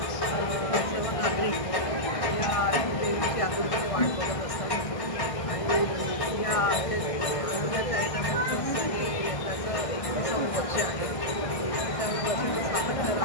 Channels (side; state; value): right; late; 1.6 ms